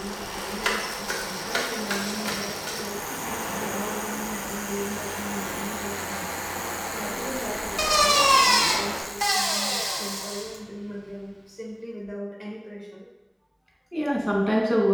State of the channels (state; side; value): identical; both; correlation 1.00